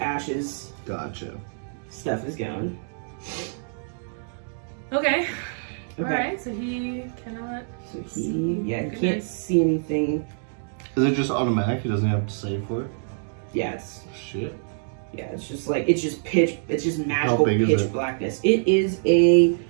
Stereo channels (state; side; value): silent; left; digital silence